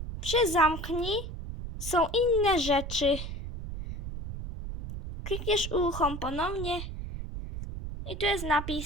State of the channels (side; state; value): right; noise; rumble, 7 dB below the sound